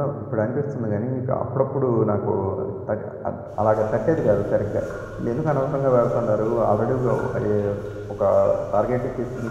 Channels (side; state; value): both; identical; correlation 1.00